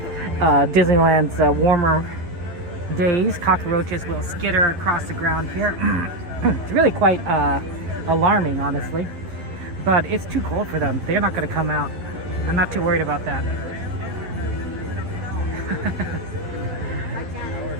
Disneyland's warmer days, cockroaches will skitter across the ground here. It's really quite alarming, honestly. But it's too cold for them. They're not going to come out. I'm not too worried about that.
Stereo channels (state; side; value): late; left; 11 ms